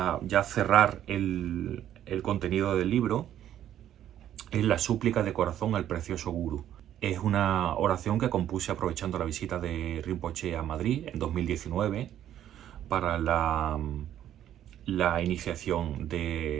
ya cerrar el contenido del libro, es la súplica de corazón al precioso Guru. Es una oración que compuse aprovechando la visita de Rinpoché a Madrid en 2019 para la iniciación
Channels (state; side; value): quieter; left; 11.2 dB